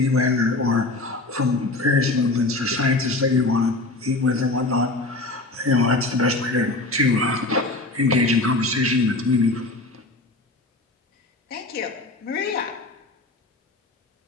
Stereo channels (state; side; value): quieter; right; 3.0 dB